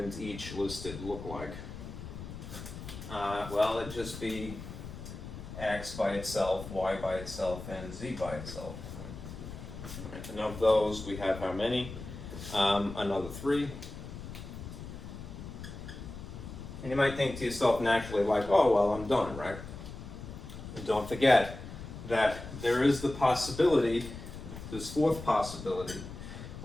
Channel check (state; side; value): noise; left; rumble, 11 dB below the sound